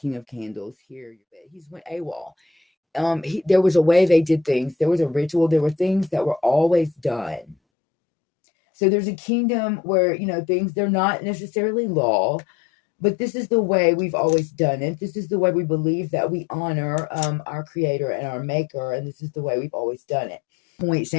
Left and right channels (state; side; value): drops out; right; at 7.6 s